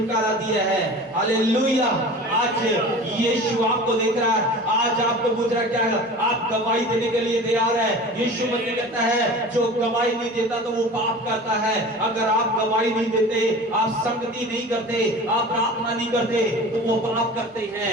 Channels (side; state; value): both; normal; correlation 0.38